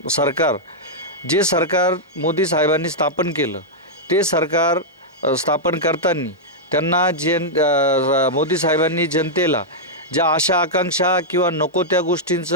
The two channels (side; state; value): both; normal; correlation -0.06